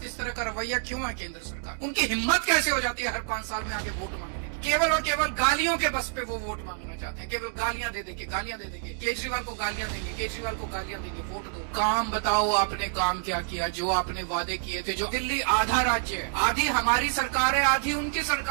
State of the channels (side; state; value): left; silent; digital silence